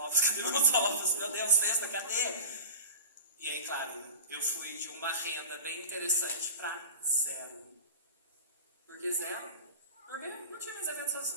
Cadê meus ovos? Meu Deus, cesta, cadê? E aí, claro, eu fui de uma renda bem interessante para 0. Por que 0? Porque não tinha mais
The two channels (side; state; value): both; inverted; correlation -0.33